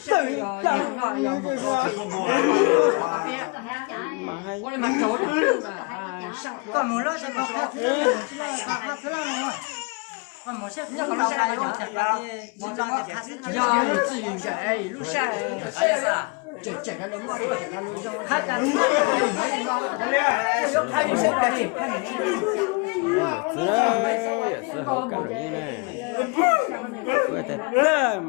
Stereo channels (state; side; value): quieter; right; 30.4 dB